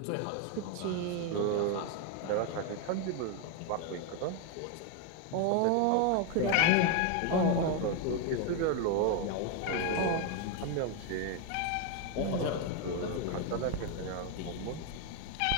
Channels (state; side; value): different; both; correlation 0.01